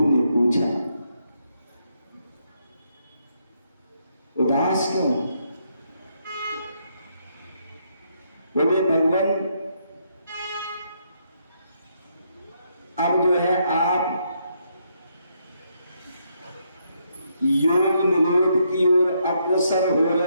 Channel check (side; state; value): both; inverted; correlation -0.76